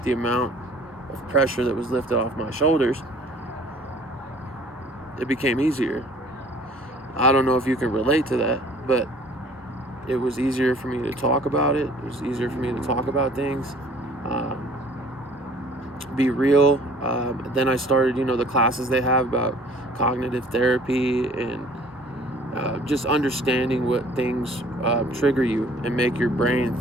the amount of pressure that was lifted off my shoulders, it became easier. I don't know if you can relate to that, but it was easier for me to talk about it. It was easier for me to talk about things, be real. Then I started, the classes they have about cognitive therapy and just understanding what things trigger you and make your brain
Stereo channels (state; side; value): normal; both; correlation 0.53